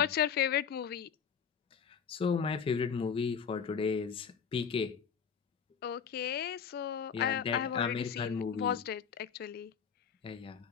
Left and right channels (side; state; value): right; quieter; 7.0 dB